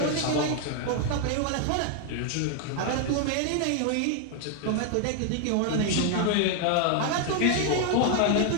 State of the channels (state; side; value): different; both; correlation 0.01